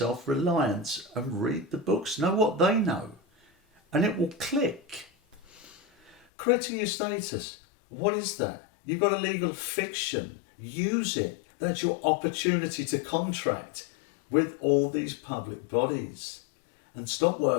and read the books. Know what they know. And it will click. Correcting your status. What is that? You've got a legal fiction. Use it. That's your opportunity to contract with all these public bodies. And stop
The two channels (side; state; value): right; drops out; at 6.2 s